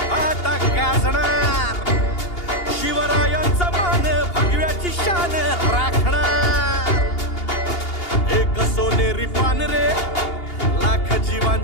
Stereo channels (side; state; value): right; late; 2.8 ms